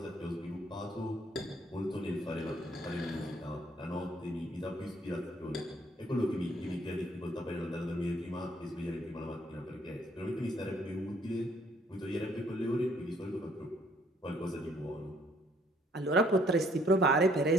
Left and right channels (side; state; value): both; normal; correlation 0.64